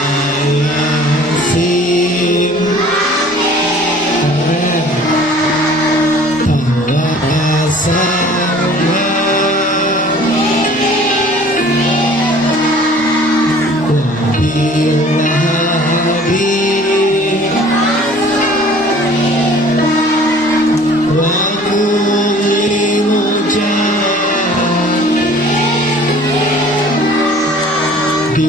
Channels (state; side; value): normal; both; correlation 0.50